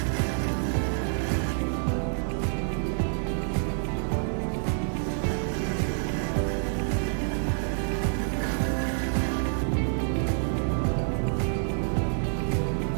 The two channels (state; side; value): silent; left; 57 dB below the other